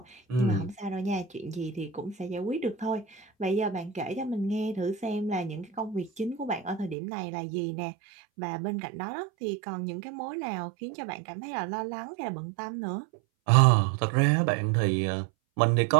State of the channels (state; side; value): drops out; left; at 7.0 s